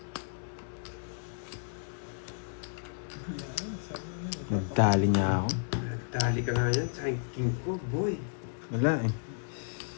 Nagtali niya ako. Dali ka nga yan sa king ko, boy. Wala eh.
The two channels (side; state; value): right; silent; 56 dB below the other